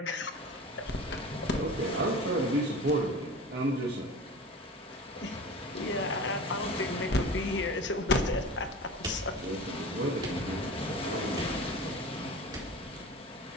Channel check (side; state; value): both; normal; correlation 0.36